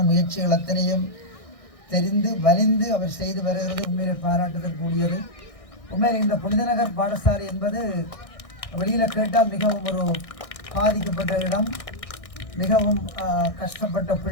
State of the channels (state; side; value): late; right; 1.6 ms